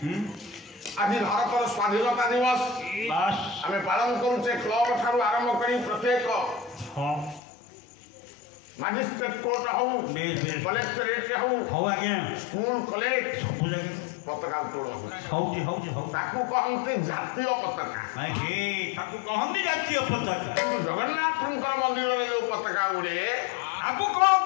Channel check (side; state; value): right; drops out; at 7.4 s